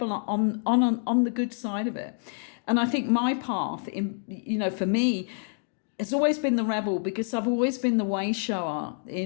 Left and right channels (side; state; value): right; silent; digital silence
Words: on the good side of it. And I think my path, for me, has always been the rebel, because I've always been the way shower